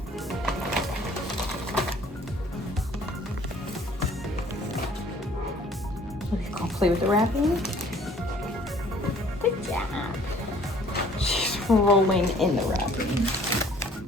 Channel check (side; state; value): both; normal; correlation 0.56